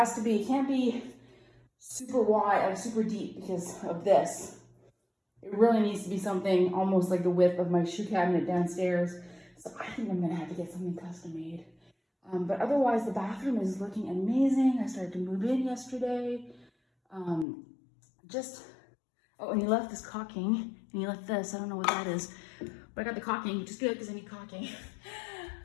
to be, it can't be super wide or super deep because of this. It really needs to be something almost like the width of my shoe cabinet downstairs. So I think I'm gonna have to get something custom made. But otherwise, the bathroom is looking amazing. I started to move in yesterday. Just, oh, and he left this caulking, and he left this, I don't know what that is, but I got the caulking, which is good because I need caulking.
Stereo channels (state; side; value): drops out; right; at 17.4 s